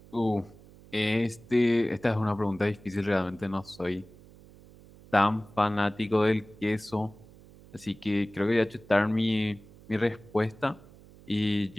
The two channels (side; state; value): right; noise; hum, 22 dB below the sound